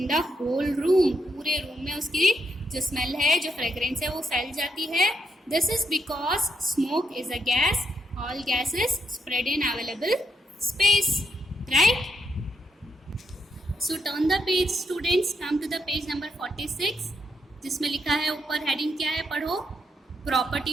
the whole room. पूरे रूम में उसकी जो स्मेल है, जो फ्रेग्रेंस है वो फैल जाती है. This is because smoke is a gas. All gases spread in available space, right? So turn the page, students. Come to the page number 46, जिसमें लिखा है ऊपर हेडिंग क्या है, पढ़ो.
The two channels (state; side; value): normal; both; correlation 0.79